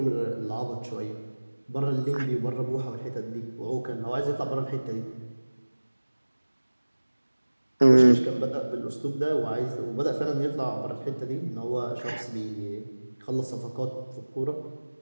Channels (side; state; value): both; inverted; correlation -1.00